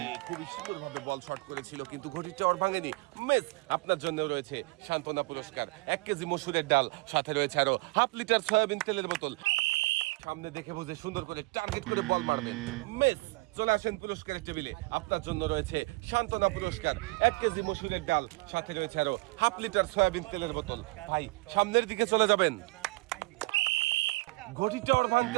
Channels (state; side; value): quieter; left; 24.7 dB